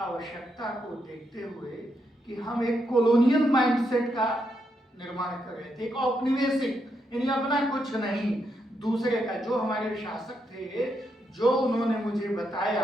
को देखते हुए कि हम एक कॉलोनियल माइंडसेट का निर्माण कर रहे थे, एक औपनिवेशिक, यानी अपना कुछ नहीं दूसरे का, जो हमारे शासक थे, जो उन्होंने मुझे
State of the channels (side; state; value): both; normal; correlation 0.80